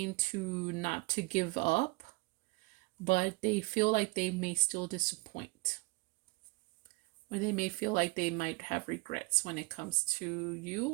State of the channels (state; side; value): quieter; left; 25.9 dB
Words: to not to give up, but they feel like they may still disappoint. Or they may feel like they might have regrets when it comes to you,